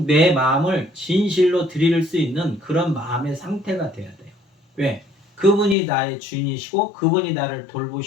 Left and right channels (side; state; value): right; drops out; at 5.8 s